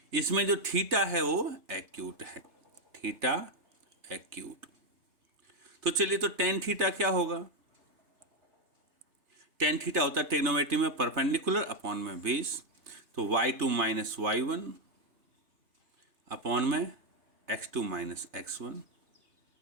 इसमें जो थीटा है वो एक्यूट है, थीटा एक्यूट। तो चलिए, तो टेन थीटा क्या होगा? टेन थीटा होता है ट्रिग्नोमेट्री में परपेंडिकुलर अपॉन में बेस। तो y2 माइनस y1 अपॉन में x2 माइनस x1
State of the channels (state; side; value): late; left; 3.3 ms